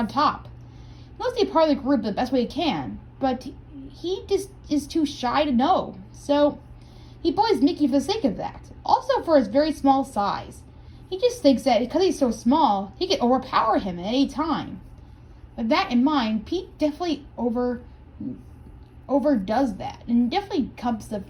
top. He wants to be part of the group the best way he can, but he just is too shy to know. So he bullies Mickey for the sake of that. Also for his very small size. He just thinks that because he's so small, he can overpower him at any time. With that in mind, Pete definitely overdoes that, and definitely becomes the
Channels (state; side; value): identical; both; correlation 1.00